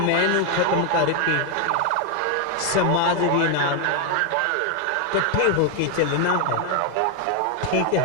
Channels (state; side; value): different; both; correlation 0.01